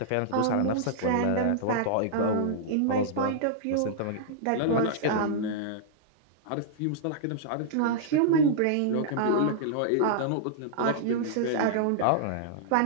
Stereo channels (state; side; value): different; both; correlation -0.02